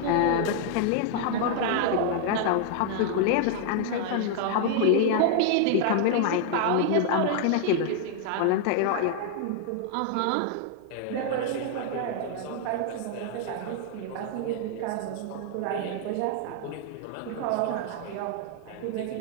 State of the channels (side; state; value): both; different; correlation 0.00